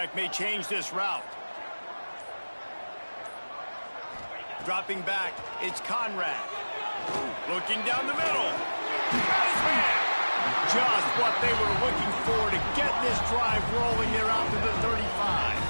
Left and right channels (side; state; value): both; inverted; correlation -1.00